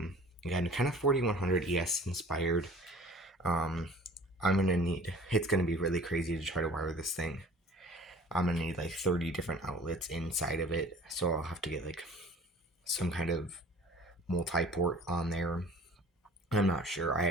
kind of 4100 ES inspired. It's gonna be really crazy to try to wire this thing. I'm gonna need like 30 different outlets inside of it, so I'll have to get like some kind of multi-port on there. I'm not sure. I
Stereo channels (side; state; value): both; normal; correlation 0.47